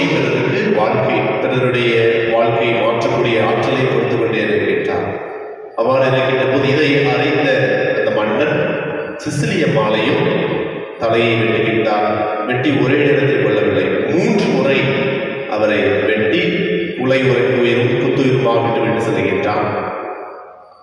பெறுவதற்கு பிறருடைய வாழ்க்கையை மாற்றக்கூடிய ஆற்றலை கொடுத்து கொண்டே இருக்கின்றார். அவ்வாறு இருக்கின்ற போது இதை அறிந்த அந்த மன்னன் சிசிலி அம்மாளையும் தலையை வெட்டுகின்றார். வெட்டி ஒரே இடத்தில் கொள்ளவில்லை, 3 முறை அவரை வெட்டி குத்துயிருமாக விட்டு செல்கின்றார்.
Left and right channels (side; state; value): both; identical; correlation 1.00